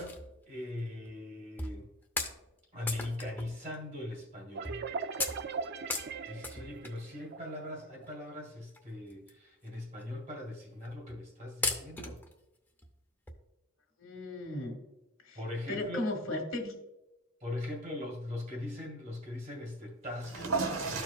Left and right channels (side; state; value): both; normal; correlation 0.28